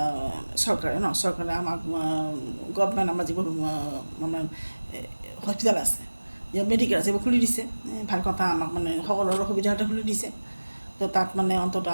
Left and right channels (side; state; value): both; inverted; correlation -1.00